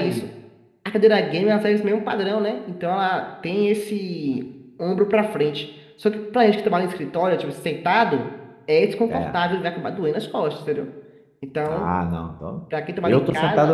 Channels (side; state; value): both; identical; correlation 1.00